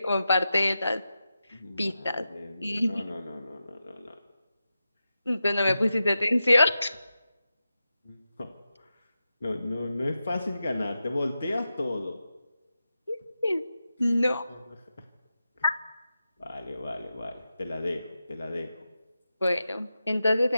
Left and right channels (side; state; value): both; inverted; correlation -0.91